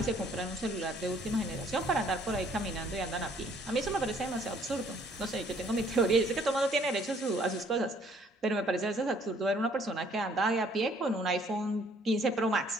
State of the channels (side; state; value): both; normal; correlation 0.62